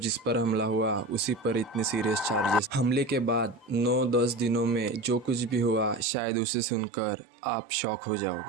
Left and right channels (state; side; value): drops out; left; at 6.1 s